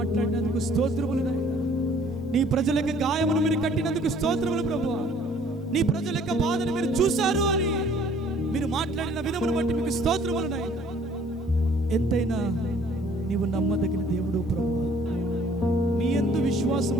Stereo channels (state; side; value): normal; both; correlation 0.57